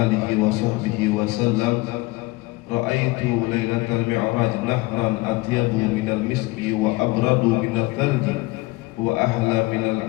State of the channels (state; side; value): quieter; right; 21.9 dB